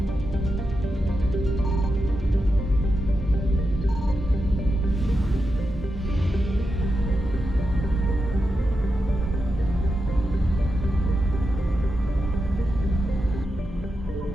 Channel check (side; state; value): both; normal; correlation 0.88